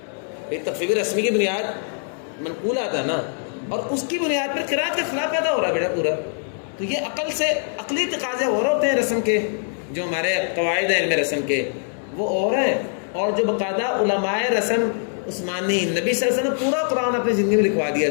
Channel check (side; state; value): right; silent; 64 dB below the other